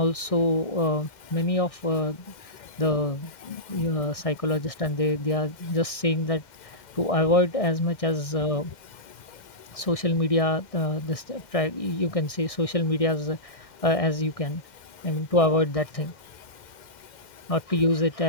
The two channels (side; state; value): right; late; 1.6 ms